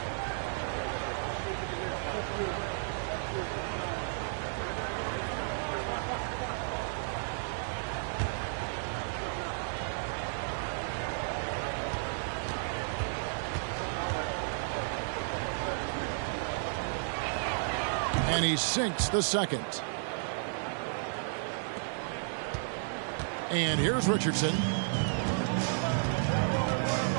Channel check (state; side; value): silent; left; digital silence